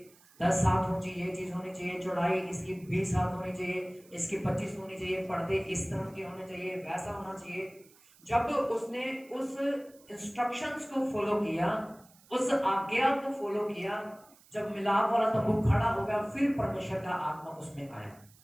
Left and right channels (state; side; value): noise; right; hiss, 27 dB below the sound